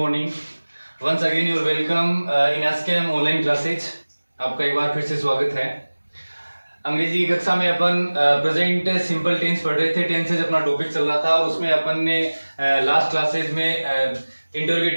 Once again, you are welcome in ASCAM online classes. आपका एक बार फिर से स्वागत है. अंग्रेजी की कक्षा में अपन प्रेजेंट सिंपल टेंस पढ़ रहे थे. टेंसेज अपना टॉपिक चल रहा था और उसमें अपन ने लास्ट क्लासेज में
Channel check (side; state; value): both; inverted; correlation -1.00